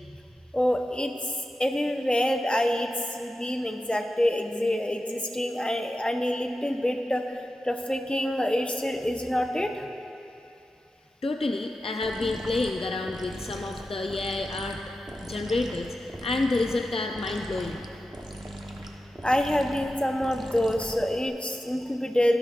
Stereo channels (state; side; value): normal; both; correlation 0.92